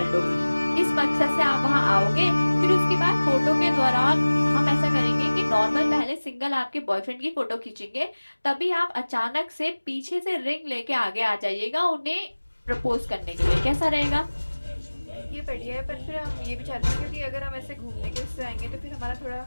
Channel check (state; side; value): inverted; both; correlation -1.00